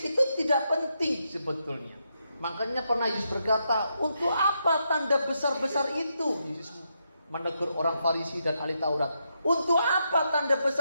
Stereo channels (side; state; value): both; inverted; correlation -0.81